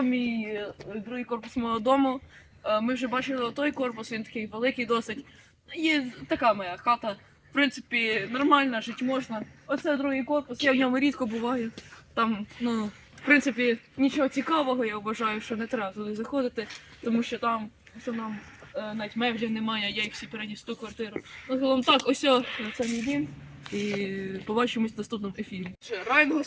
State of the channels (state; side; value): identical; both; correlation 1.00